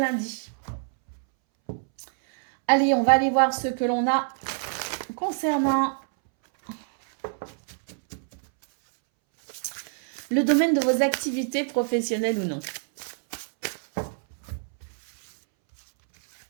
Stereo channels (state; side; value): silent; left; 61 dB below the other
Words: Allez, on va aller voir ce que l'on a concernant le domaine de vos activités professionnelles ou non.